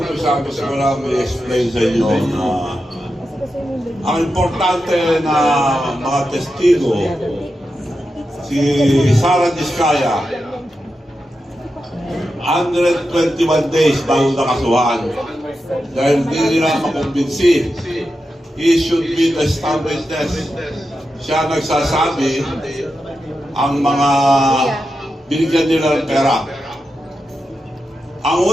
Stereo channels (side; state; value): both; normal; correlation 0.89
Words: gusto ko lang i-explain sa inyo na ang importante na mga testigo, si Sara Diskaya, 121 days bago nakasuhan. Dahil hindi nila makumbinsi. He should be the star witness. Siya nagsasabi ang mga binigyan nila ng pera. Ang